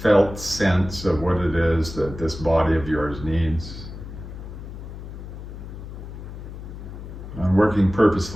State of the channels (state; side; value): noise; left; hum, 11 dB below the sound